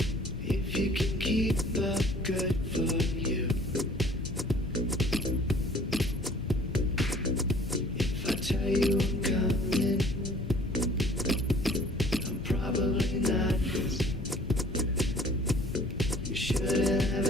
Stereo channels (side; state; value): both; normal; correlation 0.52